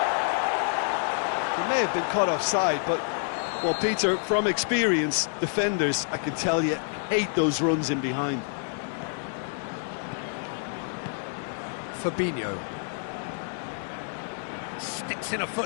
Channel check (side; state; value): right; silent; digital silence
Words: He may have been caught offside, but, well, Peter, from experience, defenders, I can tell you, hate those runs in behind. Fabinho. Sticks in a